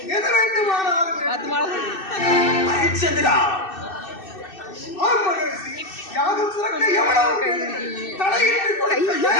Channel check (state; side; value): late; right; 2.6 ms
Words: எது வேண்டுமானாலும் ஹரிச்சந்திரா, யாகம் சிறக்க எவ்வளவு தடையின்றி